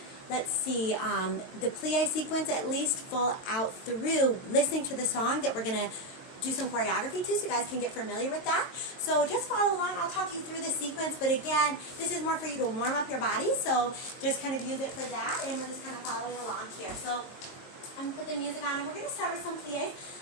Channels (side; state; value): right; late; 22 ms